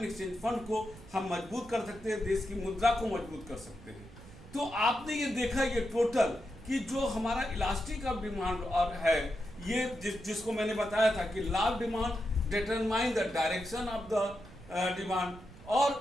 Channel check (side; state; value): right; noise; rumble, 18 dB below the sound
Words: एक्सचेंज फंड को हम मजबूत कर सकते हैं, देश की मुद्रा को मजबूत कर सकते हैं। तो आपने ये देखा ये टोटल कि जो हमारा इलास्टिक ऑफ डिमांड और है ये जिसको मैंने बताया था कि law of demand determine the direction of the demand